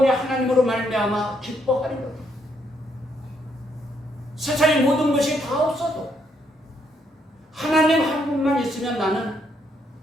하나님으로 말미암아 기뻐하리로다. 세상의 모든 것이 다 없어도 하나님 한 분만 있으면 나는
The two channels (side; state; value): both; normal; correlation 0.74